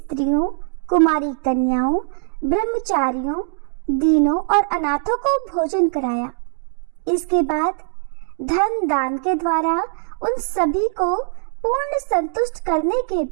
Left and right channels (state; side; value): silent; left; digital silence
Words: कुमारी कन्याओं, ब्रह्मचारियों, दीनों और अनाथों को भोजन कराया। इसके बाद धन दान के द्वारा उन सभी को पूर्ण संतुष्ट करने के